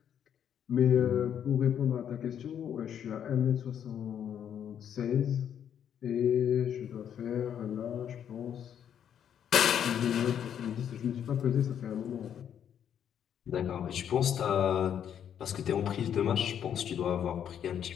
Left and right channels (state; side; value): quieter; right; 9.1 dB